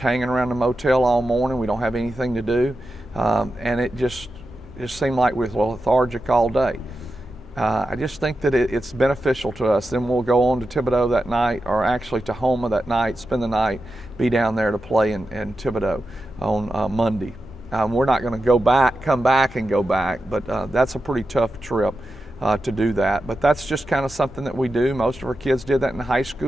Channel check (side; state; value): both; normal; correlation 0.90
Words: hanging around the motel all morning. We don't have anything to do. And it just seemed like we were lethargic all day. I just think that it's beneficial to us. Then we'll go on to Thibodaux that night, or actually to Houma that night, spend the night, be down there to play in Thibodaux on Monday. We're not going to come back and go back, but that's a pretty tough trip to do that. But that's just kind of something that we do. Most of our kids did that in high